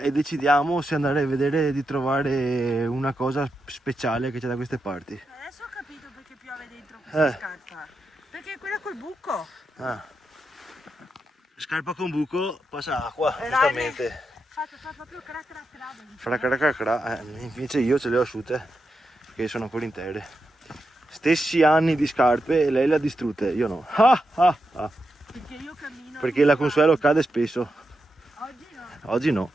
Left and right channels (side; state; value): both; normal; correlation 0.87